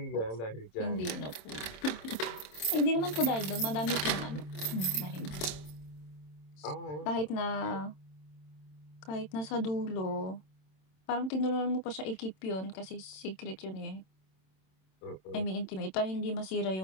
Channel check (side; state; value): right; late; 27 ms